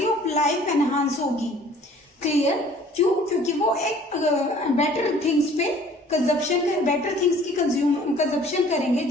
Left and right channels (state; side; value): normal; both; correlation 0.53